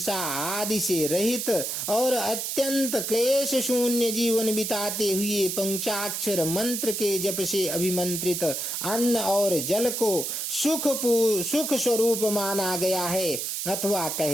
आदि से रहित और अत्यंत क्लेश शून्य जीवन बिताते हुए पंचाक्षर मंत्र के जप से अभिमंत्रित अन्न और जल को सुख स्वरूप माना गया है। अथवा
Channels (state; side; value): noise; right; hiss, 3 dB below the sound